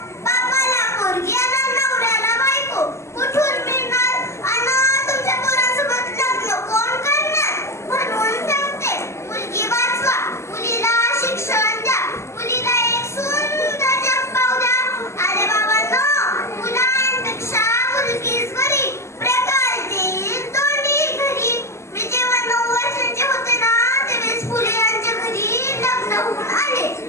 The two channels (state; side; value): late; right; 0.13 ms